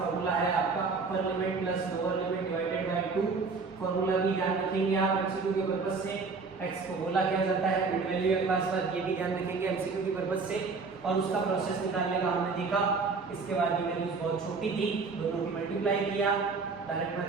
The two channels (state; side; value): quieter; left; 4.5 dB